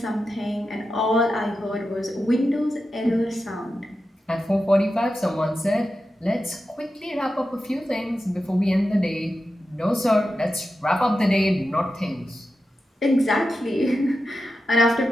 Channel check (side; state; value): both; normal; correlation 0.90